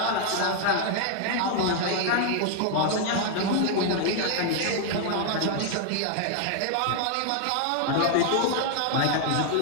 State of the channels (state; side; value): different; both; correlation 0.00